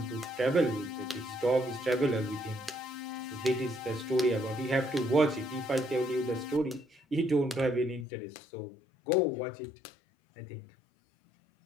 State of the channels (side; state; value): right; drops out; at 8.1 s